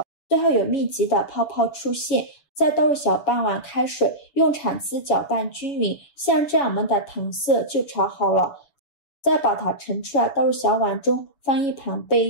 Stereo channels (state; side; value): late; right; 7.0 ms